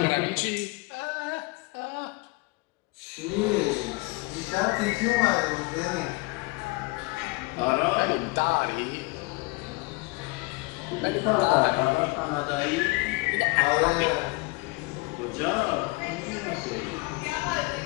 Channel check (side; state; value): right; quieter; 25.3 dB